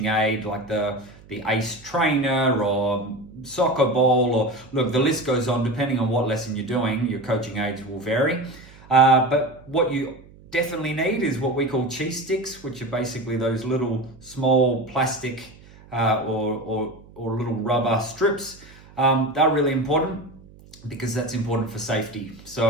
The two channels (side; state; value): right; noise; hum, 23 dB below the sound